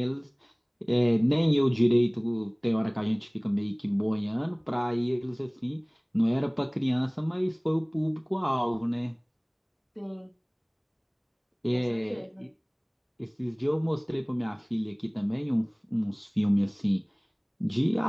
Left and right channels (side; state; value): both; identical; correlation 1.00